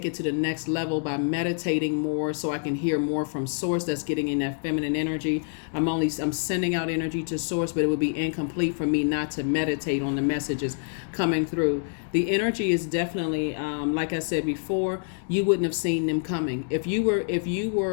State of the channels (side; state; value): right; silent; 61 dB below the other